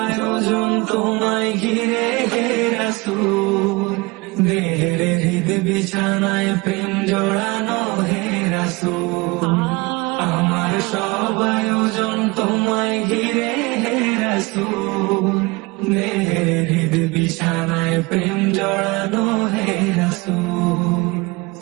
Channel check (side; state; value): left; quieter; 24.8 dB